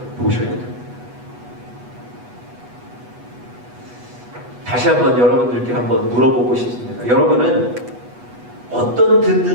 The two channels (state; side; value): late; left; 8.2 ms